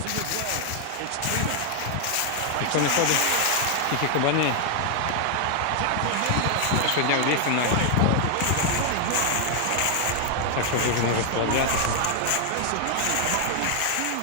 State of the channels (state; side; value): different; both; correlation 0.00